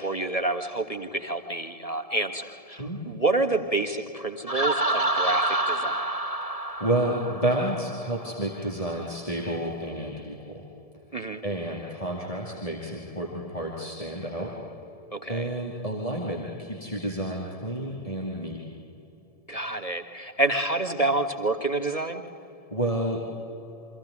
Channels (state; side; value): late; right; 1.7 ms